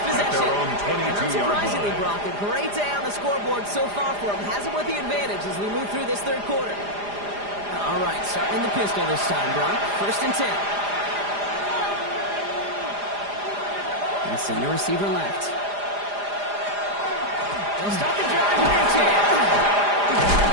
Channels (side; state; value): left; late; 4.9 ms